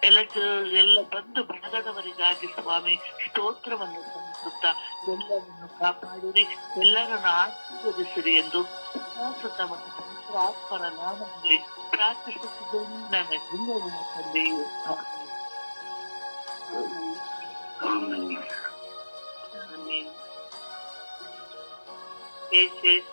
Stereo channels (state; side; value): inverted; both; correlation -1.00